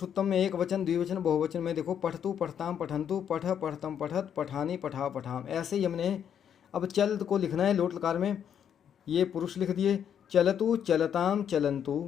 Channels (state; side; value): quieter; right; 8.7 dB